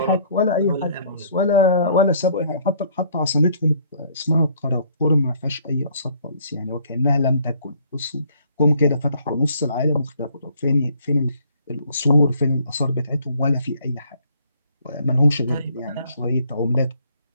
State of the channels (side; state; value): both; inverted; correlation -0.62